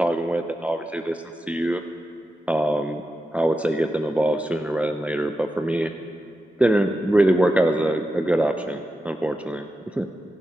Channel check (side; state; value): both; normal; correlation 0.89